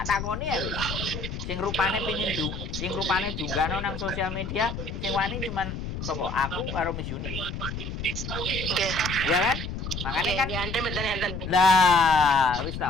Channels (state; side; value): noise; left; rumble, 6 dB below the sound